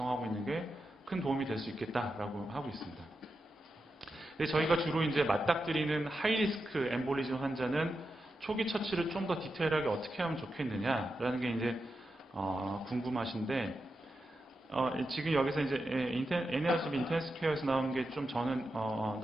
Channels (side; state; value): both; normal; correlation 0.88